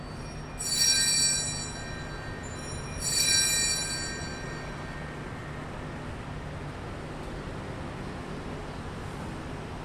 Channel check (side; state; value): both; identical; correlation 1.00